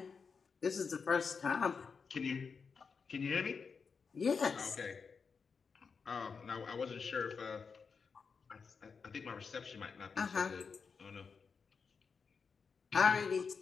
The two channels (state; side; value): quieter; right; 5.5 dB